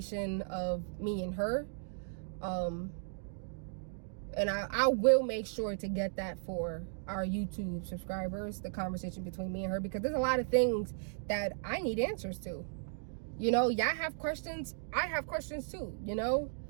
of me and her. And I will make sure to get that for our YouTube subscribers, the conversation between me and her, because there's a lot of things that I need answers to. You know, y'all have questions, I have questions too, you know?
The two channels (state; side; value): silent; left; digital silence